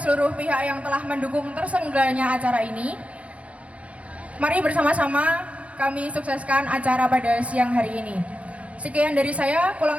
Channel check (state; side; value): late; left; 0.064 ms